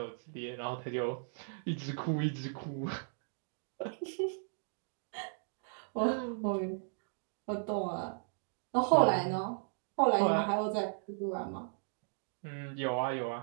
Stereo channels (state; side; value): silent; left; digital silence